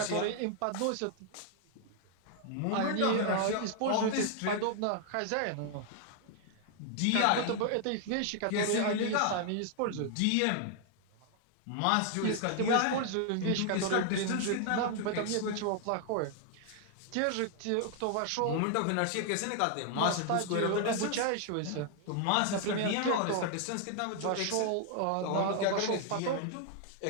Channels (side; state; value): both; different; correlation 0.00